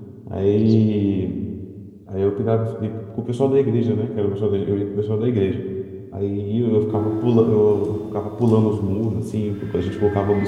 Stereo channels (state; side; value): identical; both; correlation 1.00